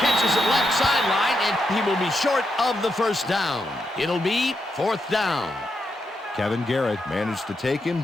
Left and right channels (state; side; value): normal; both; correlation 0.83